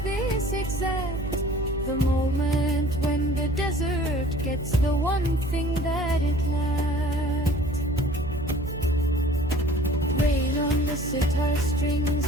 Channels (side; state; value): right; noise; hum, 8 dB below the sound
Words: exact, the moment when the desert gets the one thing that it lacked. Rain on the sitar strings,